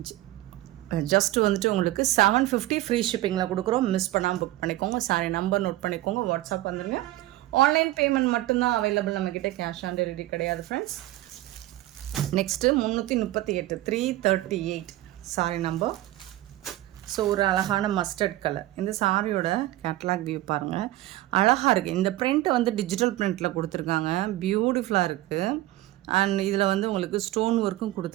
ஜஸ்ட்டு வந்துட்டு உங்களுக்கு 750 ஃப்ரீ ஷிப்பிங்கில் கொடுக்குறோம். மிஸ் பண்ணாமல் புக் பண்ணிக்கோங்க. சாரி நம்பர் நோட் பண்ணிக்கோங்க. வாட்ஸ்அப் வந்துடுங்க. ஆன்லைன் பேமெண்ட் மட்டும்தான் அவைலபிள் நம்மக்கிட்ட, கேஷ் ஆன் டெலிவரி கிடையாது friends. Next 338 338 sorry number. So ஒரு அழகான மஸ்டர்ட் கலர். இந்த சாரியோட கேட்லாக் வியூ பாருங்கள், அழகாக இருக்குது. இந்த பிரிண்ட்டை வந்து டிஜிட்டல் பிரிண்ட்டில் கொடுத்துருக்காங்க, பியூட்டிஃபுல்லாக இருக்குது. அண்ட் இதில் வந்து உங்களுக்கு ஸ்டோன் ஒர்க்கும்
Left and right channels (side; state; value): left; quieter; 16.2 dB